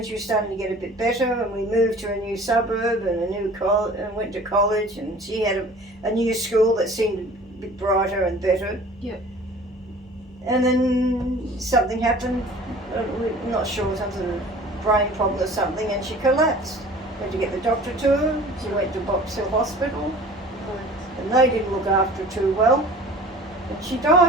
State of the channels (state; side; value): normal; both; correlation 0.45